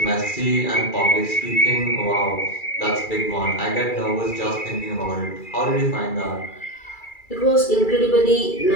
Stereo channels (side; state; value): right; late; 2.3 ms